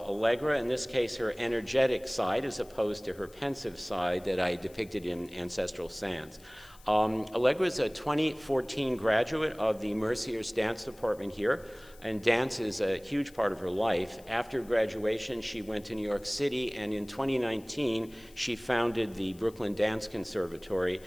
Allegra, in this case her energetic side as opposed to her pensive side that I depicted in Ancestral Sands. Allegra is a 2014 graduate of the Mercyhurst dance department here, and dance is a huge part of her life. After graduation, she went to New York City, and in 2019, she founded the Brooklyn Dance Conservatory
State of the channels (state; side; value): noise; left; hiss, 25 dB below the sound